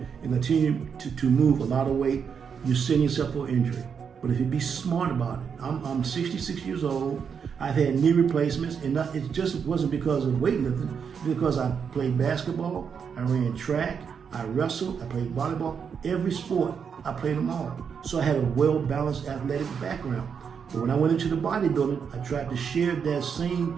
and continue to move a lot of weight, you're setting yourself for injury. But if you be smart about it, I'm 66 years old. I've had knee replacements, and it just wasn't because of weightlifting. It's because I played basketball, I ran track, I wrestled, I played volleyball. Every sport, I played them all. So I had a well-balanced athletic background. But when I went into the bodybuilding, I tried to share that same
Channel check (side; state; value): left; quieter; 6.7 dB